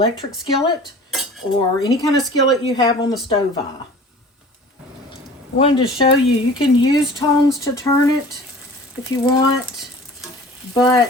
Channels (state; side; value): normal; both; correlation 0.44